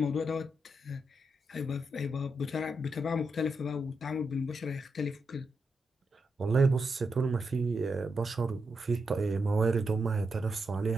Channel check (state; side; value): normal; both; correlation 0.84